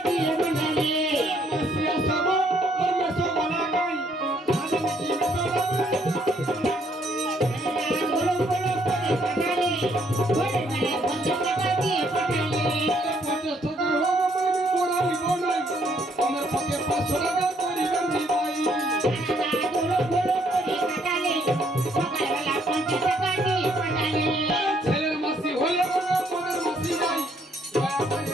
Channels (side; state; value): both; normal; correlation 0.68